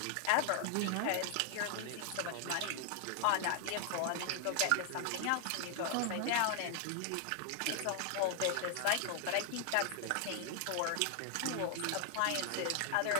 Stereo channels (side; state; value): both; different; correlation 0.00